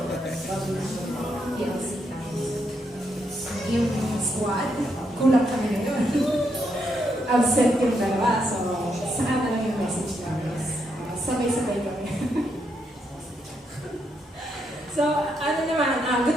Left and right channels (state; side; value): normal; both; correlation 0.79